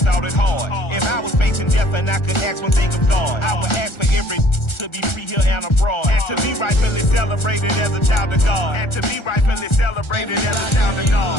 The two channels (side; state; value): right; late; 1.4 ms